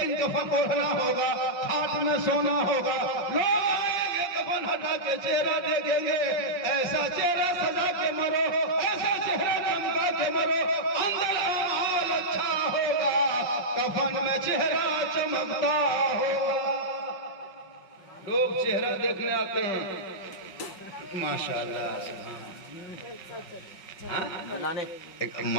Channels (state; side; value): late; right; 5.5 ms